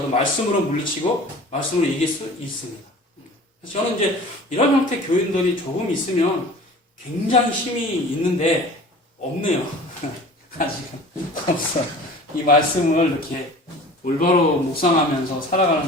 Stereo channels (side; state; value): both; normal; correlation 0.43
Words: 말씀으로 물리치고 말씀으로 이길 수 있습니다. 그래서 저는 이제 이런 형태 교인들이 조금 있으면 굉장히 힘이 있는데 없네요. 아직은 없어요. 이 말씀을 이렇게 올바로 묵상하면서 살아가는